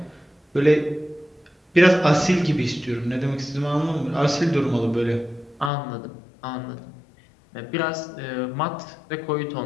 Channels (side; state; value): right; drops out; at 5.7 s